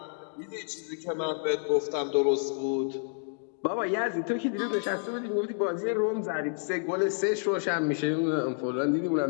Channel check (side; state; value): right; silent; digital silence